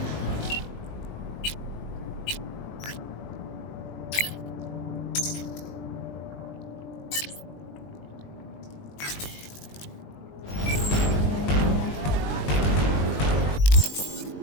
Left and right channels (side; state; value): right; late; 20 ms